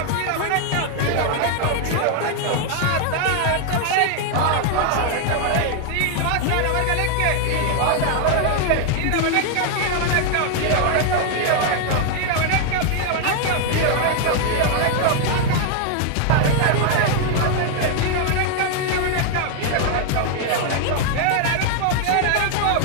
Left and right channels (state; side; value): different; both; correlation 0.00